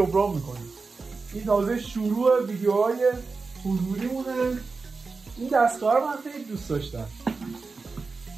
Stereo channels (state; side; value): quieter; left; 4.3 dB